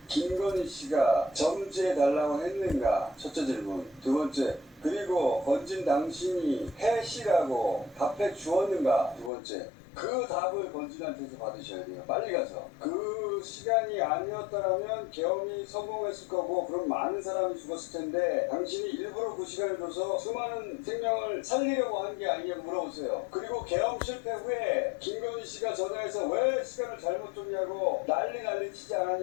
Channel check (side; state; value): right; drops out; at 9.3 s